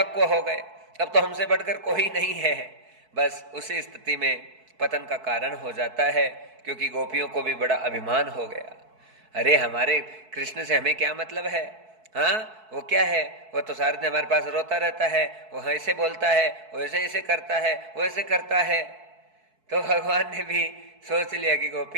हो गए, अब तो हमसे बढ़कर कोई नहीं है। बस उसी स्थिति में पतन का कारण हो जाता है, क्योंकि गोपियों को भी बड़ा अभिमान हो गया। अरे हमारे कृष्ण से हमें क्या मतलब है? हाँ, वो क्या है? वो तो सारे दिन हमारे पास रोता रहता है, वो ऐसे बोलता है, वो ऐसे ऐसे करता है, वो ऐसे करता है। तो भगवान ने भी सोच लिया कि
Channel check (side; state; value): left; late; 4.6 ms